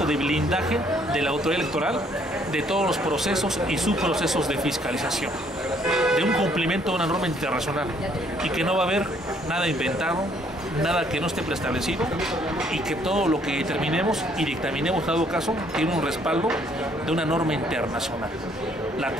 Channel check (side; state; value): both; normal; correlation 0.65